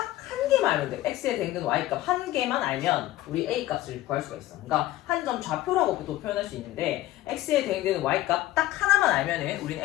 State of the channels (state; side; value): quieter; right; 15.8 dB